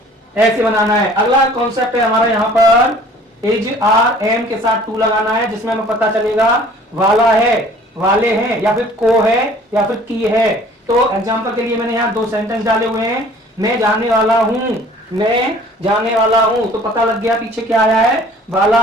ऐसे बनाना है। अगला कॉन्सेप्ट है हमारा यहाँ पर इज आर एम के साथ टू लगाना है, जिसमें हमें पता चलेगा वाला है, वाले हैं, या फिर को है, या फिर की है। तो एग्जांपल के लिए मैंने यहाँ दो सेंटेंस डाले हुए हैं। मैं जाने वाला हूं, मैं जाने वाला हूं, तो पता लग गया पीछे क्या आया है, वाला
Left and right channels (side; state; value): both; normal; correlation 0.51